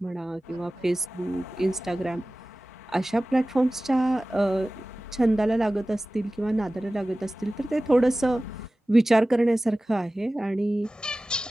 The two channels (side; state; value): both; normal; correlation 0.97